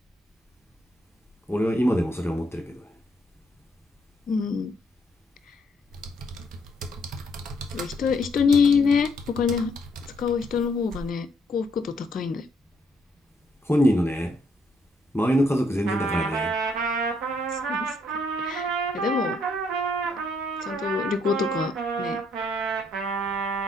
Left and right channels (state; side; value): normal; both; correlation 0.71